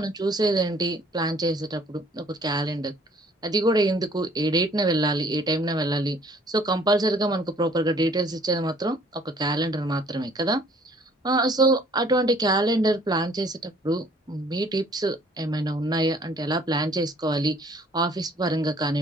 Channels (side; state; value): both; normal; correlation 0.58